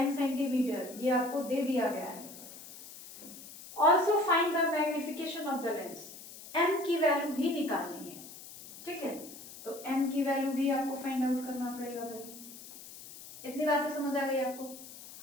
centimetre, ये आपको दे दिया गया है। Also find the magnification of the lens, m की वैल्यू भी निकालनी है। ठीक है, तो m की वैल्यू भी आपको फाइंड आउट करना पड़ेगा भाई। इतनी बातें समझ आ गई आपको?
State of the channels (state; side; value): noise; left; hiss, 15 dB below the sound